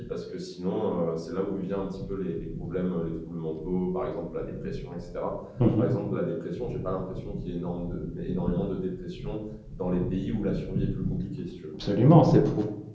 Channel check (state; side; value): identical; both; correlation 1.00